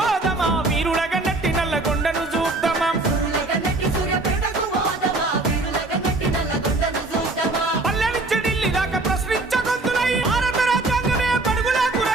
వీరుల గన్నట్టి నల్లగొండను చూద్దామా పల్లె నుంచి ఢిల్లీ దాకా ప్రశ్నించగొంతులై భారత రాజ్యాంగమే పడుగులకు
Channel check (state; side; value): quieter; left; 3.1 dB